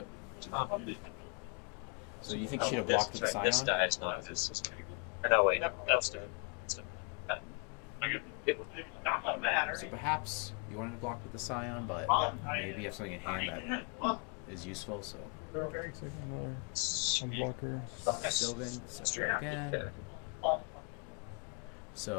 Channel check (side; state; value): right; quieter; 37.6 dB